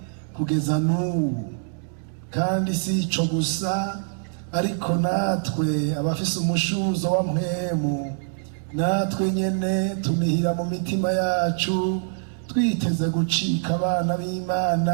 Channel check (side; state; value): left; silent; digital silence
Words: kugeza n'ubu, kandi si ico gusa, ariko natwe abafise umushuzo wa mpwemu, natwe nyene tunihira mu mitima yacu twiteze gucika abana